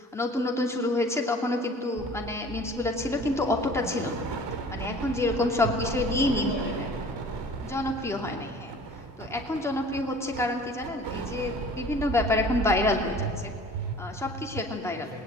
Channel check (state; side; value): normal; both; correlation 0.46